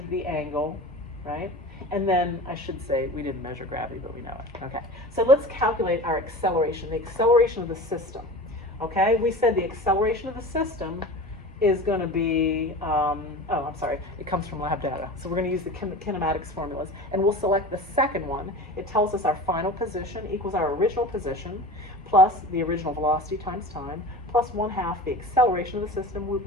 the angle, right? And then I should say we didn't measure gravity, but we know it. Okay, so let's calculate our acceleration, the acceleration of the system. Okay, we said the acceleration of the system is going to be, it comes from lab data. So we're going to use the kinematics formulas, and we'll select the second one. It tells us our final position equals our original position, plus the original velocity times time, plus 1/2 the acceleration of the system,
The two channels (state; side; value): normal; both; correlation 0.34